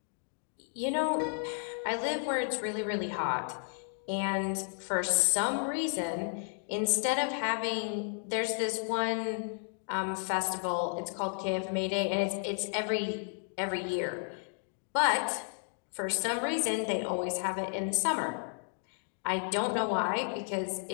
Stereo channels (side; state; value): right; silent; 56 dB below the other